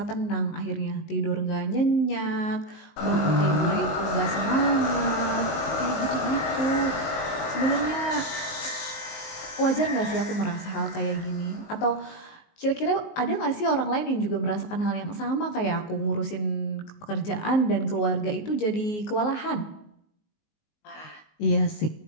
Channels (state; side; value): late; right; 19 ms